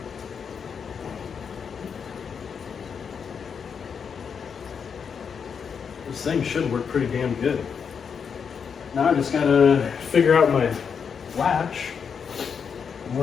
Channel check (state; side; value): quieter; right; 6.6 dB